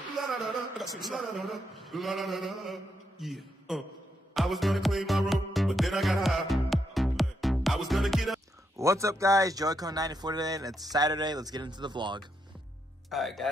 I was gonna clean my room, but then I got high. I was gonna get up. What's up guys, Joycon94 today, and it's Saturday. Let's get into the vlog. Alright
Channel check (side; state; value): both; normal; correlation 0.80